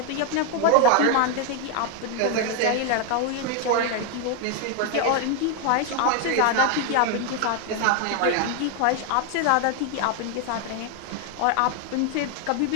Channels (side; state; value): both; different; correlation 0.01